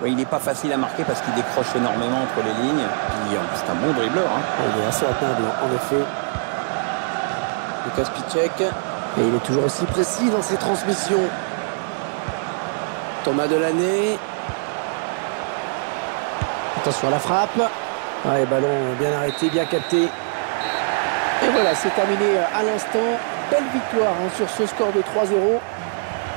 Oui, il n'est pas facile à marquer parce qu'il décroche énormément entre les lignes. Puis c'est un bon dribbleur. Hein. Il est assez atteindre, en effet. Lucas Piszczek. Et il est toujours aussi précis dans ses transmissions. Thomas Delaney. Attention à la frappe. Ouais, ballon bien arrêté, bien capté. Et voilà, c'est terminé à l'instant. Belle victoire hein, sur ce score de 3-0.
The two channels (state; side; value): silent; left; digital silence